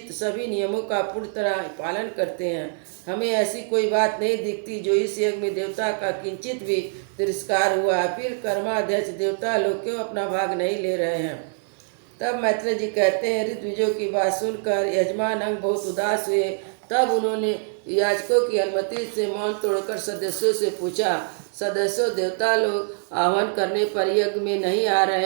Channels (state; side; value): silent; left; 62 dB below the other